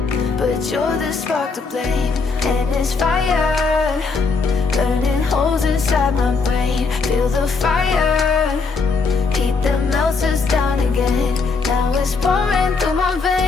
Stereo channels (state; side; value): quieter; right; 4.5 dB